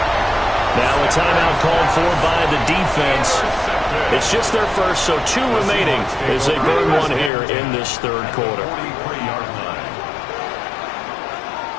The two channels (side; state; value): right; drops out; at 7.3 s